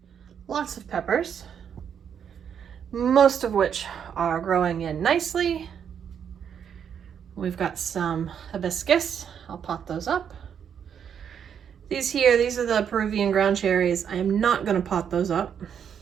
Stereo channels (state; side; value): quieter; left; 8.0 dB